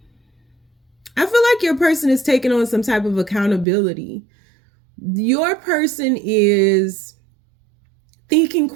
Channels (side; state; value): left; drops out; at 3.7 s